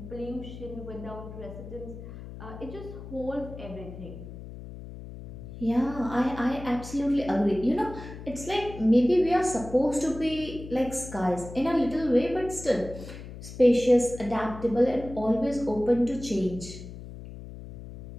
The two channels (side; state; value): left; noise; hum, 13 dB below the sound